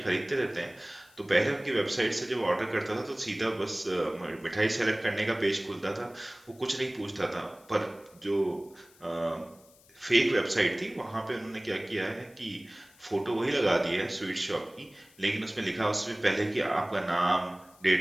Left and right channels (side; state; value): left; noise; hiss, 27 dB below the sound